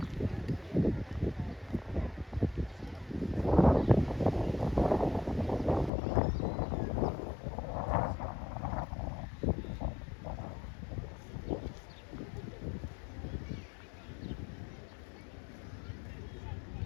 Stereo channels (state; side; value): drops out; right; at 5.9 s